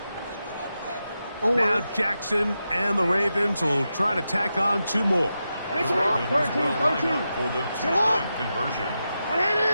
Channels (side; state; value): both; inverted; correlation -0.89